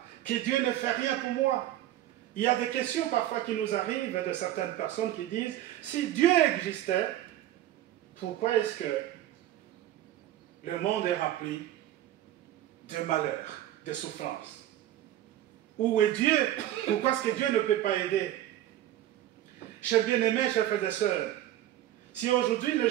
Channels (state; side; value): quieter; left; 13.1 dB